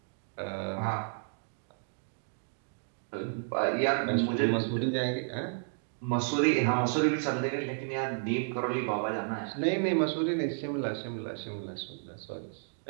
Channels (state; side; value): silent; left; digital silence